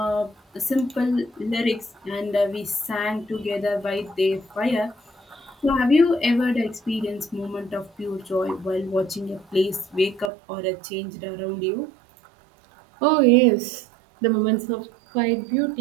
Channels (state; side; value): drops out; left; at 10.3 s